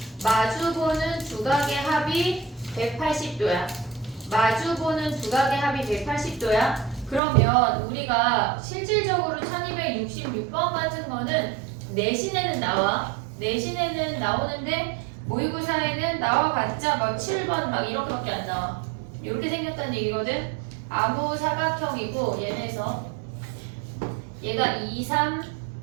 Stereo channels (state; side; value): drops out; left; at 7.2 s